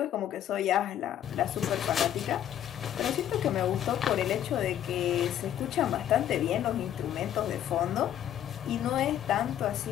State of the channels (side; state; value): right; quieter; 10.9 dB